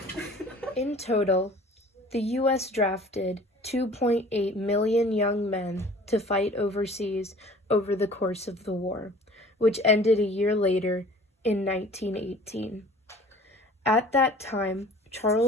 In total, the U.S. drafted 2.8 million young men to fight overseas over the course of the war, which ended a year later in 1918. At that time,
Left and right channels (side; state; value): both; normal; correlation 0.48